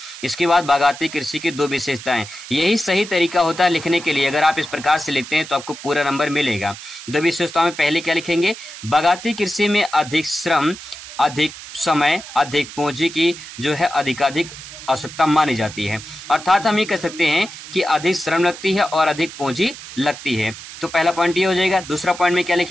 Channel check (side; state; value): right; noise; hiss, 14 dB below the sound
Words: इसके बाद बागाती कृषि की 2 विशेषताएं। यही सही तरीका होता है लिखने के लिए। अगर आप इस प्रकार से लिखते हैं तो आपको पूरा नंबर मिलेगा। 2 विशेषताओं में पहले क्या लिखेंगे, बागाती कृषि में अधिक श्रम, अधिक समय, अधिक पूंजी की जो है अधिकाधिक आवश्यकता मानी जाती है। अर्थात हम ये कह सकते हैं कि अधिक श्रम लगती है और अधिक पूंजी लगती है। तो पहला पॉइंट ये हो जाएगा। दूसरा पॉइंट में क्या